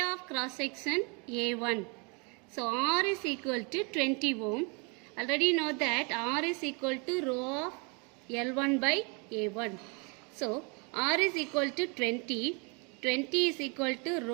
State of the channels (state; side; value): quieter; left; 32.7 dB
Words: of cross section A1. So R is equal to 20 ohm. Already know that R is equal to rho of L1 by A1. So R is equal to 20. 20 is equal to